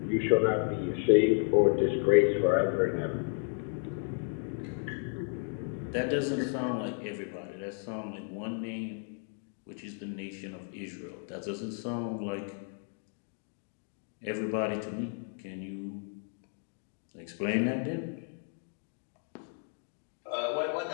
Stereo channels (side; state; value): right; silent; 56 dB below the other